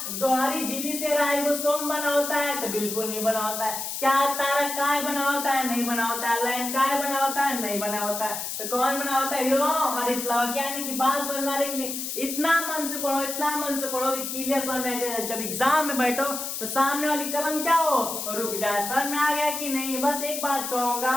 दोहरी झिल्ली से राइबोसोम बना होता है? तो बिल्कुल नहीं बना होता है। क्या तारकाय बना होता है? नहीं बना होता है। लैंगिकाय बना होता है? नहीं बना होता है। तो कौन बना होता है? हरित लवक। यानी कि बात समझ में नहीं, इतना मन से पढ़ो, इतना मन से पढ़ो कि क्लियर समझ में, जब एग्जाम में बैठो तो सामने वाली कलम क्या हो? रुक जाए। समझ में आ गया कि नहीं? बस एक बात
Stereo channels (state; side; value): noise; left; hiss, 5 dB below the sound